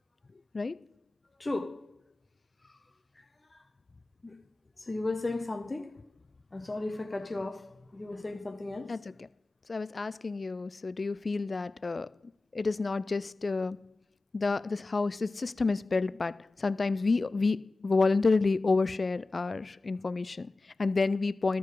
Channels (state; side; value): quieter; right; 3.3 dB